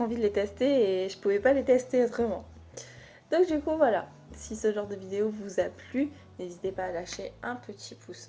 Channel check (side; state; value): both; identical; correlation 1.00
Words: envie de les tester et je pouvais pas les tester autrement. Donc du coup, voilà. Si ce genre de vidéo vous a plu, n'hésitez pas à lâcher un petit